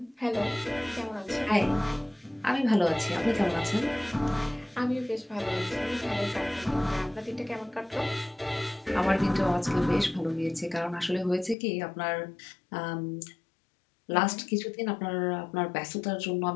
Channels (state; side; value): drops out; right; at 11.6 s